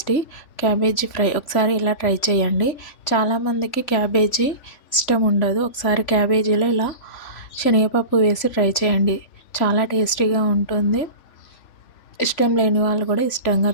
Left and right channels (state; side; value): late; right; 3.5 ms